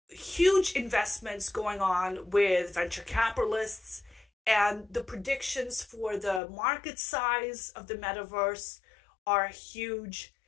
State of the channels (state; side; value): drops out; right; at 6.4 s